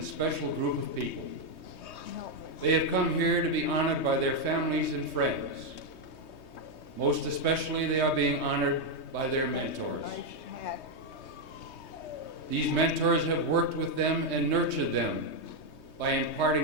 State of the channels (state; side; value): late; right; 3.2 ms